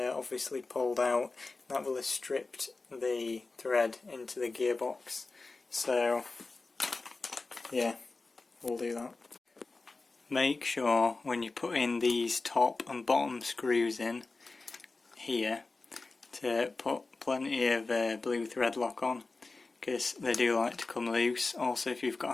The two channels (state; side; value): quieter; right; 3.7 dB